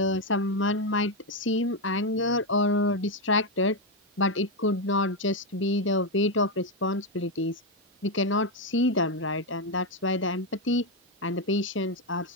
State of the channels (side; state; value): both; normal; correlation 0.06